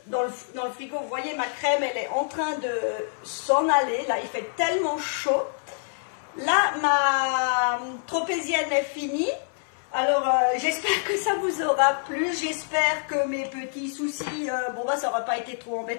dans le frigo. Vous voyez, ma crème, elle est en train de s'en aller. Là, il fait tellement chaud. Là, ma tropézienne est finie. Alors, j'espère que ça vous aura plu. J'espère que mes petits soucis, ça n'aura pas été trop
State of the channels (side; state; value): right; silent; 61 dB below the other